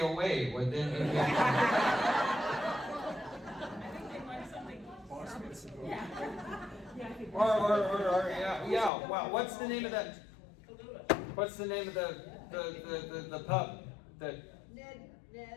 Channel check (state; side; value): drops out; right; at 8.9 s